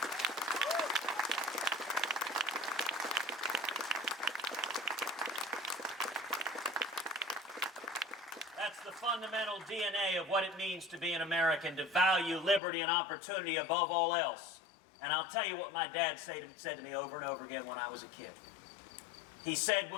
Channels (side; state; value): right; drops out; at 12.6 s